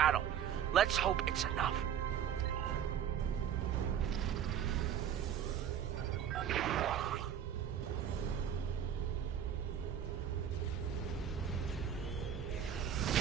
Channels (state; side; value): quieter; left; 9.0 dB